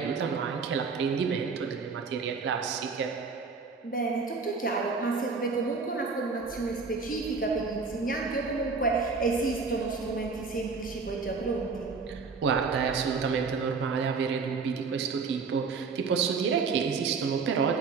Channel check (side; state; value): left; quieter; 4.9 dB